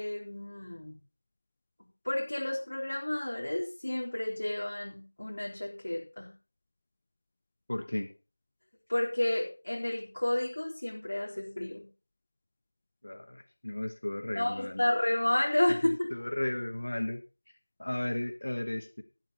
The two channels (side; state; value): both; inverted; correlation -1.00